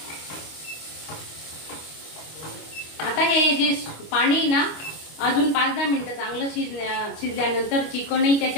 आता हे जे पाणी ना अजून 5-10 मिनिटं चांगलं शिजल्यानंतर चिकनही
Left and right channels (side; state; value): right; late; 25 ms